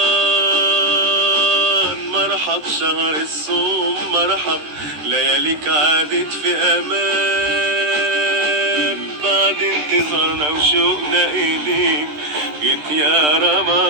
مرحب شهر الصوم، مرحب لياليك عادت في امان. بعد انتظارنا وشوقنا اليك جيت يا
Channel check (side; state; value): left; late; 13 ms